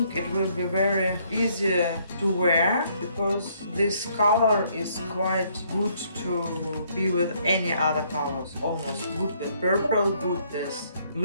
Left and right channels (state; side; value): inverted; both; correlation -0.67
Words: it will be very easy to wear because this color is quite good to be with any other colors. Almost good with purple, good with